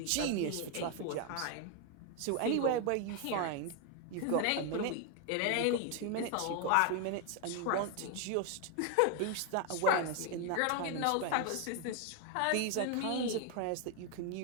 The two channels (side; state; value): both; different; correlation 0.01